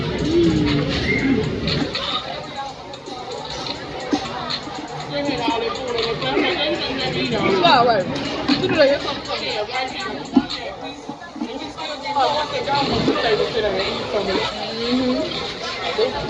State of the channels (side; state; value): both; identical; correlation 1.00